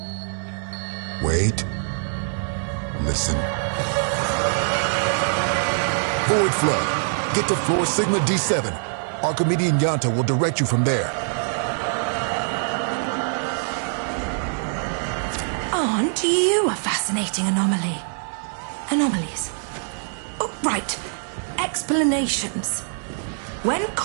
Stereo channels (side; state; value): left; silent; 63 dB below the other